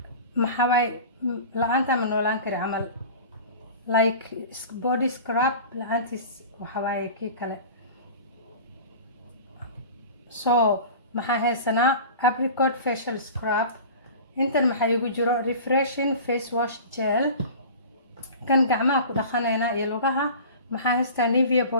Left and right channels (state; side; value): inverted; both; correlation -0.37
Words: maxaa way la'aanta ma noolaan kari camal like body scrub la'aantiis waxa way kii kale. so maxaa haysanaa apricot facial scrub. intan maxaa igu jiro refreshing face wash gel kan gacmaha ku dhaqanayna iyo lugaha. maxaa haystaa Nivea